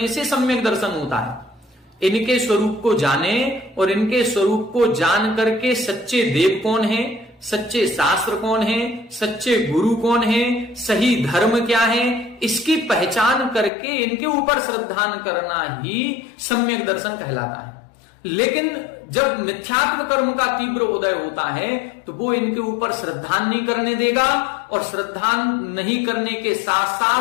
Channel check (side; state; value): right; drops out; at 13.7 s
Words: से सम्यक दर्शन होता है। इनके स्वरूप को जाने और इनके स्वरूप को जान करके सच्चे देव कौन है, सच्चे शास्त्र कौन है, सच्चे गुरु कौन है, सही धर्म क्या है, इसकी पहचान करके इनके ऊपर श्रद्धान करना ही सम्यक दर्शन कहलाता है। लेकिन जब मिथ्यात्व कर्म का तीव्र उदय होता है तो वो इनके ऊपर श्रद्धान नहीं करने देगा, और श्रद्धान नहीं करने के साथ